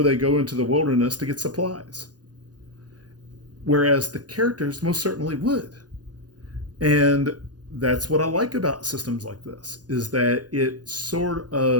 they go into the wilderness to get supplies. Whereas the characters most certainly would. And that's what I like about systems like this, is that it sort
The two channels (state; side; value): late; left; 0.69 ms